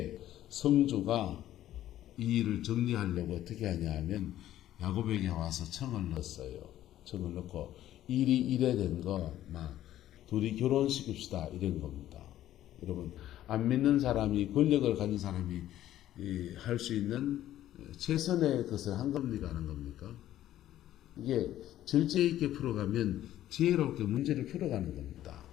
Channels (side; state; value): right; quieter; 12.9 dB